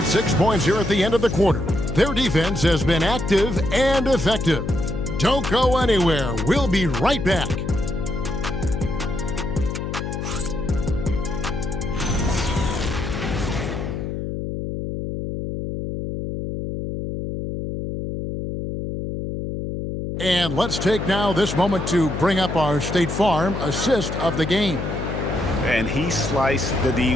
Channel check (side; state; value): left; noise; hum, 4 dB below the sound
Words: 6 points here at the end of the quarter. Their defense has been active and effective. Don't go anywhere. We'll be right back. And let's take now this moment to bring up our State Farm assist of the game. And he sliced the D